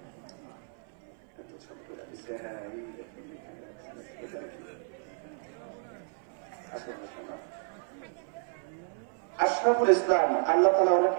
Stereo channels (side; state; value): left; silent; 57 dB below the other